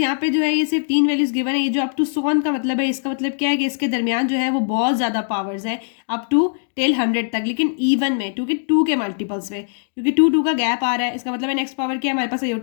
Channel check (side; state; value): right; silent; digital silence